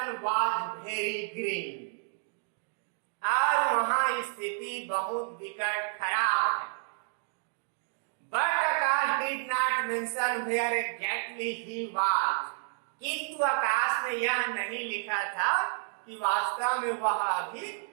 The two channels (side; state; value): left; silent; digital silence